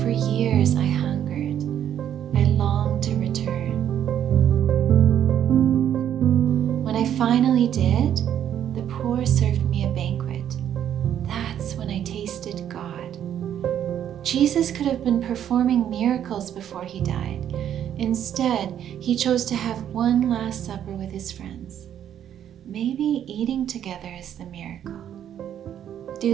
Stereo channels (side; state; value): left; quieter; 10.0 dB